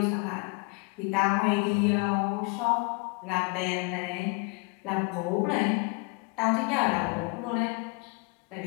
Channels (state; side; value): quieter; right; 30.8 dB